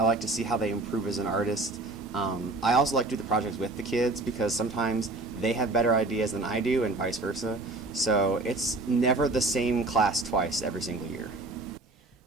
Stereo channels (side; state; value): left; quieter; 3.1 dB